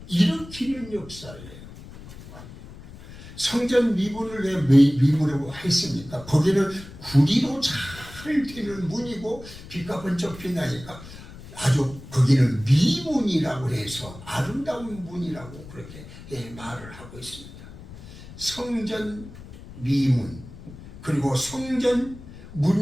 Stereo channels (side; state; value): left; noise; rumble, 16 dB below the sound